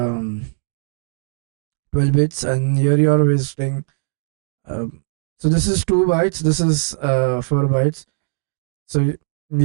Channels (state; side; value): silent; left; digital silence